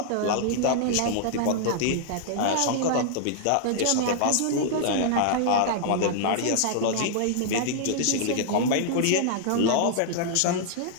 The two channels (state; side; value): different; both; correlation -0.01